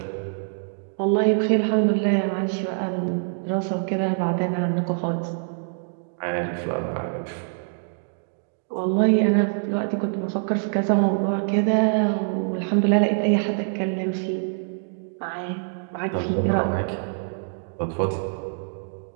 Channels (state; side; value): silent; left; digital silence